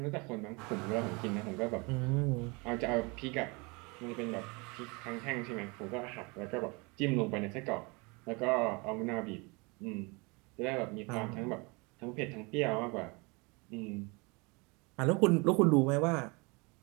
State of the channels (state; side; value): quieter; left; 28.3 dB